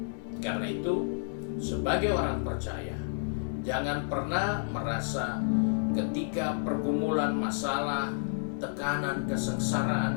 Karena itu, sebagai orang percaya, jangan pernah merasa ketika pergumulan masalah, tekanan,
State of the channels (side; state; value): right; silent; digital silence